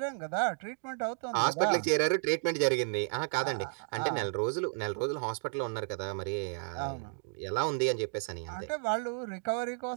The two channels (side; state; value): left; silent; 56 dB below the other